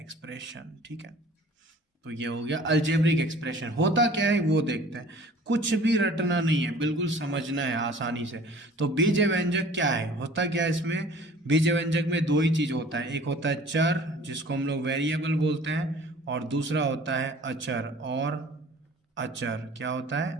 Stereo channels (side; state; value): both; normal; correlation 0.48